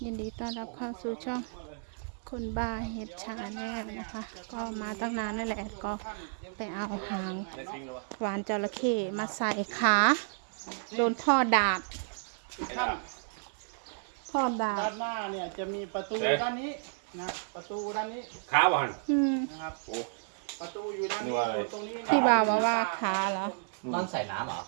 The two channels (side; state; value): left; silent; digital silence